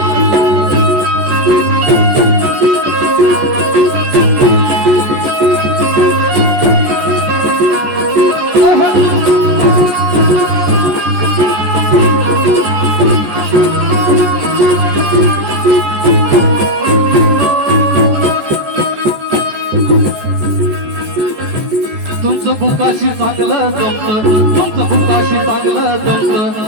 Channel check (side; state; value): left; late; 14 ms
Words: तुमचं बुकाशी चांगलं जमतं, तुमचं बुकाशी चांगलं जमतं,